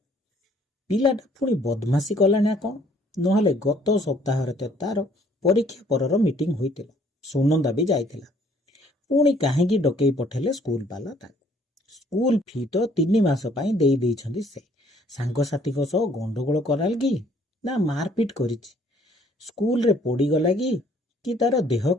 पिलाटा पुणी बदमाशी कला ना कौन नहले गत सप्ताह तार परीक्षा परर मीटिंग होइतिला सुनंदा भी जाइतिला पुणी काहेकी डकई पठेले स्कूल वाला स्कूल फी तो 3 मास पई देई देइछंदी से सांगसाथी को सह गंडगोल कराल कि ना मारपीट करिछि स्कूल रे पड़ी गला कि तार देह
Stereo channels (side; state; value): both; normal; correlation 0.61